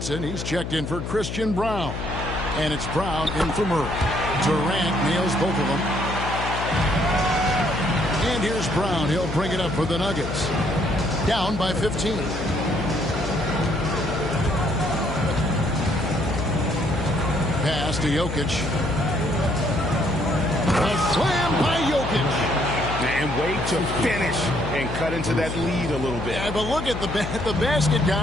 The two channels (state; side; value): noise; left; hum, 5 dB below the sound